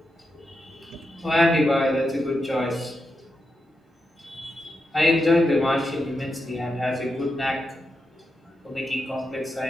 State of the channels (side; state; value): both; normal; correlation 0.86